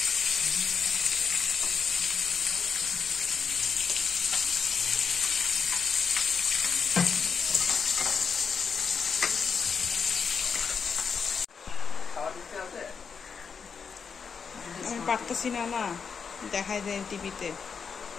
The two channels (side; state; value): right; quieter; 6.1 dB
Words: আমি পারতেছি না, না দেখাই দেয় টিভিতে।